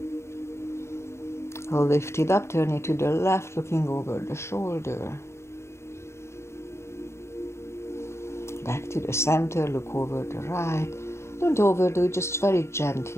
Lift it up, turn it to the left, looking over the shoulder. Back to the center, look over the right. Don't overdo it, just very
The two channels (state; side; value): late; right; 0.13 ms